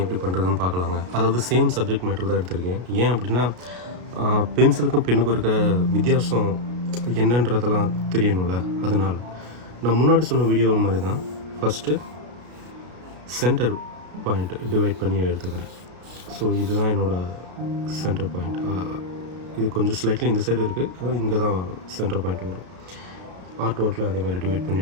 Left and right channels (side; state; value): left; late; 33 ms